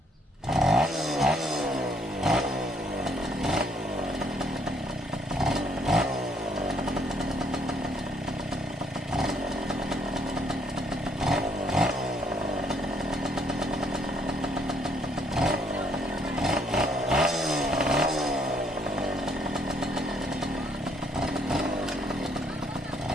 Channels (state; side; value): normal; both; correlation 0.68